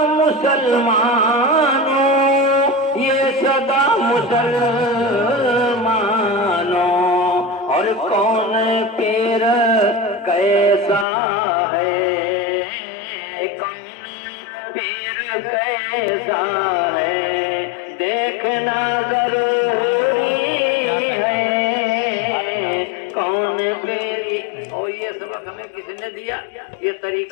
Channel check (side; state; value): right; drops out; at 11.1 s